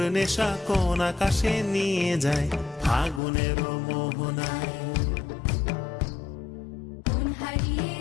নেশা কোন আকাশে নিয়ে যায়। ফাগুনের মোহনায়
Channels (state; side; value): drops out; right; at 3.2 s